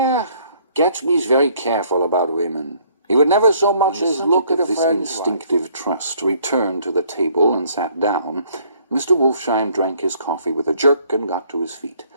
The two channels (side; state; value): both; inverted; correlation -0.62